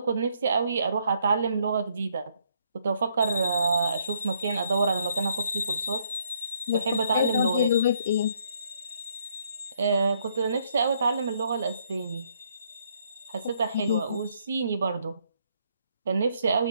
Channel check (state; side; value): inverted; both; correlation -0.70